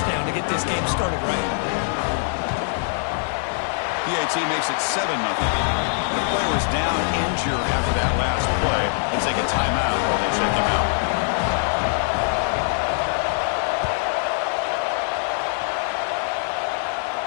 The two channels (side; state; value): right; silent; digital silence